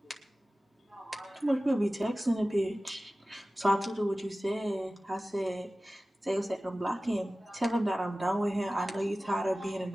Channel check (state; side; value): normal; both; correlation 0.96